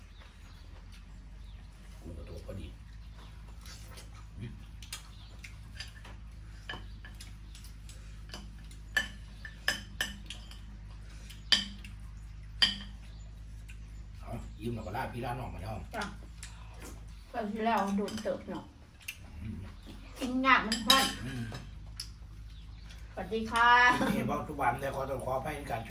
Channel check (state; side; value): identical; both; correlation 1.00